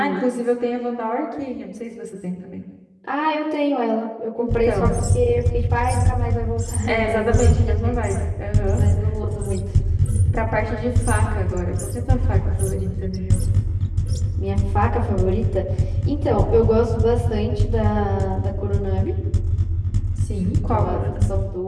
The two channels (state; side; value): identical; both; correlation 1.00